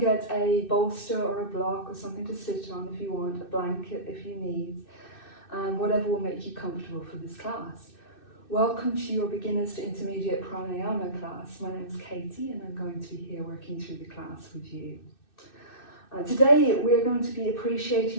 a bolster or a block or something to sit on if you want, a blanket if you need, whatever will make you comfortable for this class. Welcome to your Beginners to Intermediate Pranayama class. My name is Katie and I'm going to be here working through the class with you. Today we're going to be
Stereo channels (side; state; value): right; late; 2.6 ms